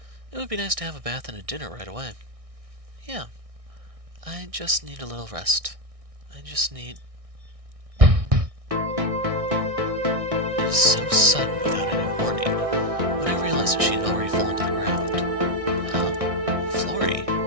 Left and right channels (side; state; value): left; late; 1.6 ms